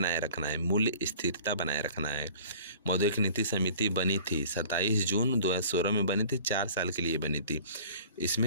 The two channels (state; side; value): inverted; both; correlation -0.47